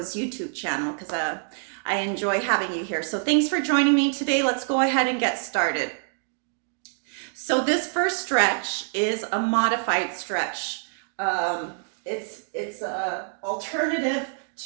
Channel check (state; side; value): silent; left; digital silence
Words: YouTube channel because I enjoy having you here. So thanks for joining me today. Let's go ahead and get started. So this first stretch is a modified stretch. It's a alternative